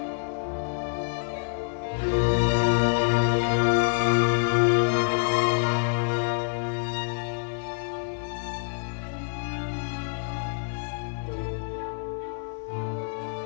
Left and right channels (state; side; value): silent; right; digital silence